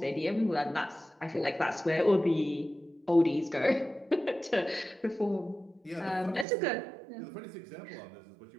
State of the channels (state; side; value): drops out; left; at 6.5 s